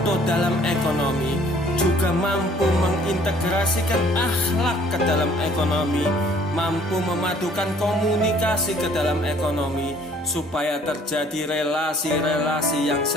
dalam ekonomi, juga mampu mengintegrasikan akhlak ke dalam ekonomi, mampu memadukan komunikasi ke dalam ekonomi, supaya terjadi relasi-relasi yang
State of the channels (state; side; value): normal; both; correlation 0.57